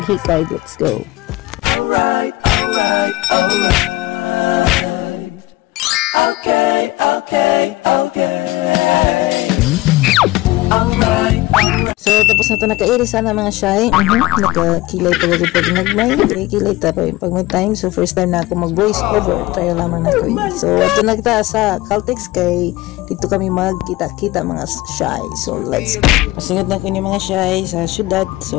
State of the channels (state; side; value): quieter; right; 19.0 dB